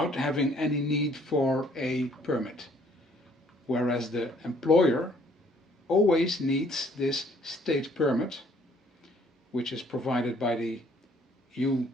having any need for a permit. Whereas the employer always needs this state permit, which is provided by the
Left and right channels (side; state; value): both; normal; correlation 0.62